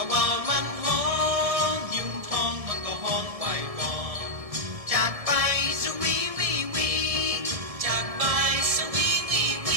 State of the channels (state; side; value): late; left; 1.7 ms